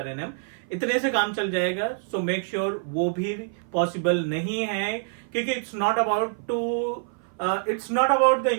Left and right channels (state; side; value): silent; left; 55 dB below the other